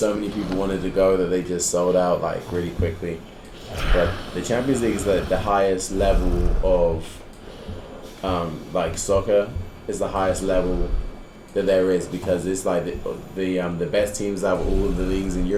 many people wanted to go that they just sold out like really quickly. But the Champions League is the highest level of like soccer is the highest level that there is because it's like the best teams out of all of the leagues in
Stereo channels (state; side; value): identical; both; correlation 1.00